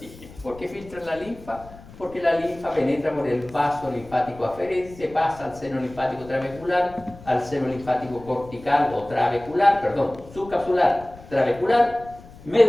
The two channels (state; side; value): noise; left; rumble, 19 dB below the sound